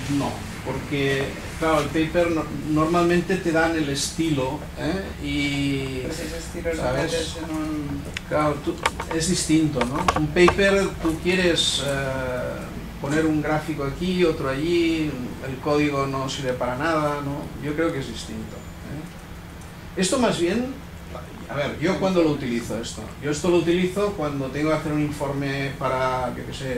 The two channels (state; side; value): identical; both; correlation 1.00